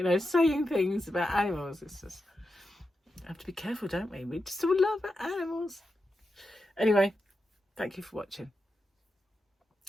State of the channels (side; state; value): both; normal; correlation 0.88